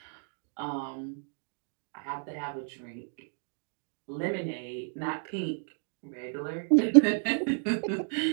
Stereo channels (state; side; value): silent; left; 57 dB below the other